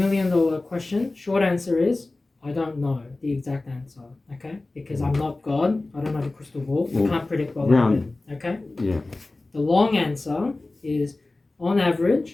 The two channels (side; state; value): right; quieter; 3.1 dB